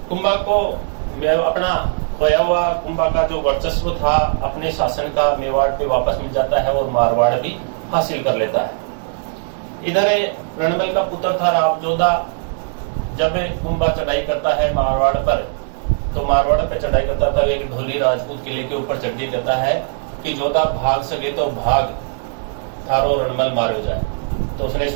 कुंभा को अपना खोया हुआ कुंभा का जो वर्चस्व था अपने शासन का, मेवाड़ पे वापस मिल जाता है और मारवाड़ भी हासिल कर लेता है। इधर रणमल का पुत्र था राव जोधा। जब कुंभा चढ़ाई करता है मारवाड़ पर, तो मारवाड़ पे चढ़ाई करता था, एक ढोली राजपूत किले के ऊपर चढ़ के कहता है कि जोधा भाग सके तो भाग, थारो रणमल मारो जाए। तो उसने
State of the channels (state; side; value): silent; left; digital silence